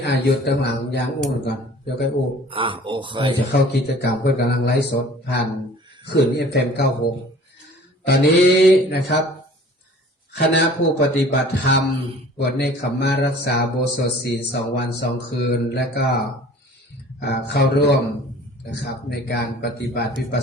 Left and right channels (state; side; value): normal; both; correlation 0.48